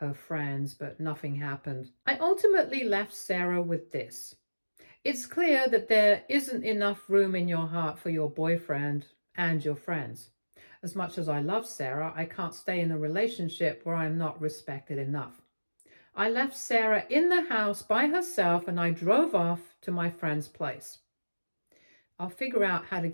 friends, but nothing happened. I ultimately left Sarah with this. It's clear that there isn't enough room in your heart for your boyfriend and your friends. As much as I love Sarah, I can't stay in a relationship where I'm not respected enough. I left Sarah in the house by herself and I drove off to my friend's place. I'll figure out how to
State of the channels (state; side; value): inverted; both; correlation -1.00